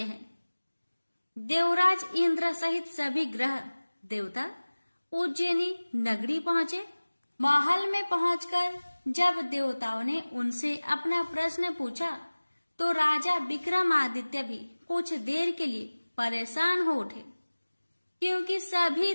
हैं। देवराज इंद्र सहित सभी ग्रह देवता उज्जैनी नगरी पहुंचे। महल में पहुंचकर जब देवताओं ने उनसे अपना प्रश्न पूछा तो राजा विक्रमादित्य भी कुछ देर के लिए परेशान हो उठे, क्योंकि सभी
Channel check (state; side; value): inverted; both; correlation -1.00